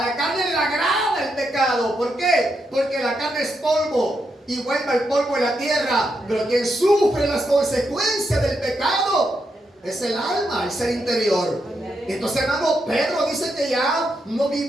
carne le agrada el pecado. ¿Por qué? Porque la carne es polvo y vuelve al polvo de la tierra. Pero quien sufre las consecuencias del pecado es el alma, el ser interior. Entonces, hermano, Pedro dice que ya no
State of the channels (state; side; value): normal; both; correlation 0.82